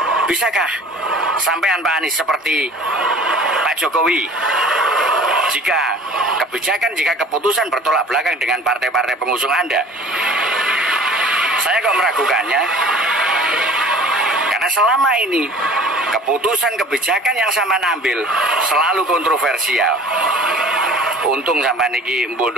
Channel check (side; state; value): both; normal; correlation 0.45